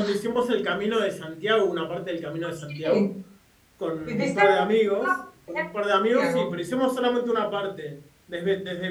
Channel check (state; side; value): identical; both; correlation 1.00